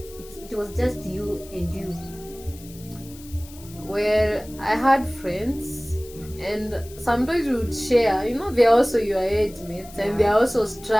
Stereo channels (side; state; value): left; noise; hiss, 20 dB below the sound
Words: was just you and you? Well, I had friends, and sometimes we would share. They're also your age mates, and they're also